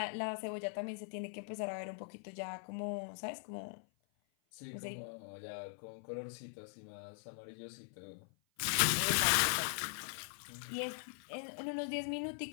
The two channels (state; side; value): silent; right; 50 dB below the other